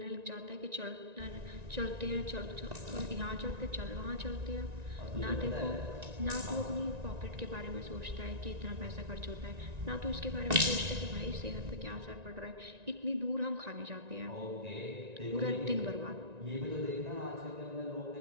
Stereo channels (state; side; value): late; left; 1.9 ms